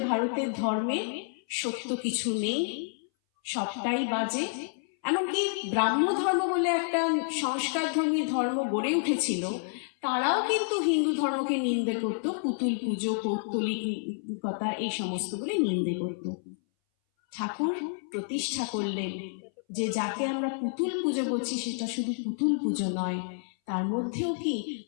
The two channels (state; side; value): silent; right; 58 dB below the other